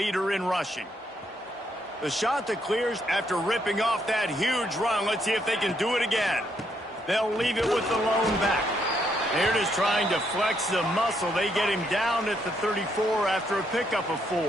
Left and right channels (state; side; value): normal; both; correlation 0.75